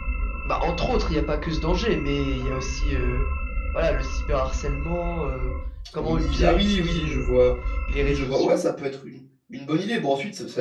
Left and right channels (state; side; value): identical; both; correlation 1.00